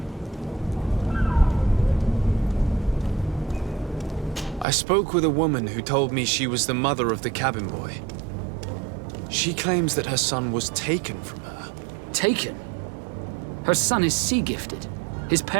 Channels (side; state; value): left; drops out; at 4.7 s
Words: I spoke with a woman who told me she was the mother of the cabin boy. She claims that her son was taken from her. Taken? Her son is sea-gifted. His